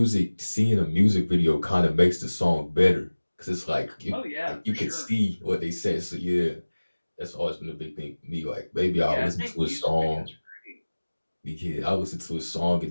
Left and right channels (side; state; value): both; inverted; correlation -1.00